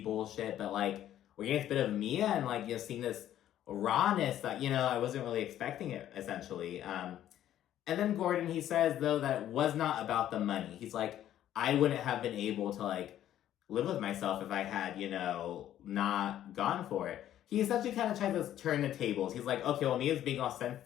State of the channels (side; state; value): right; quieter; 11.8 dB